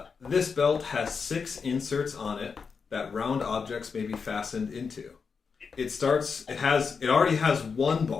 this belt has 6 inserts on it that round objects may be fastened into. It already has 1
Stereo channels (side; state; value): right; quieter; 5.5 dB